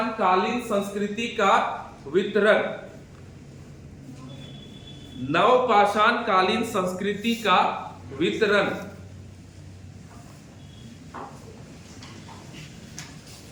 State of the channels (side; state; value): both; identical; correlation 1.00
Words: कालीन संस्कृति का वितरण, नवपाषाण कालीन संस्कृति का वितरण।